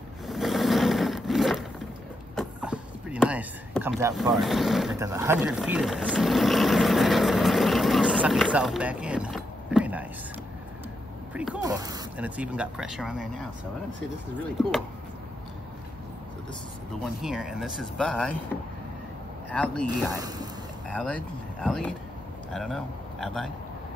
It's pretty nice. It comes out far. It does 100 feet of this. It'll suck itself back in. Very nice. Pretty cool. And it's even got pressure on there now. So I'm gonna say this is really cool. So this is the one here, and this is by Ayleid. I don't know. Ayleid.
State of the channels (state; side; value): normal; both; correlation 0.83